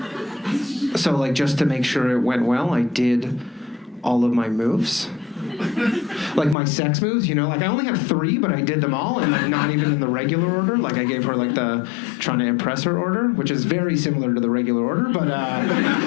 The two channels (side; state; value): right; drops out; at 6.6 s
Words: So, like, just to make sure it went well, I did all of my moves. Like my sex moves, you know, like I only have 3, but I did them all, and like not even in the regular order. Like I gave her like the trying to impress her order, which is very similar to the regular order, but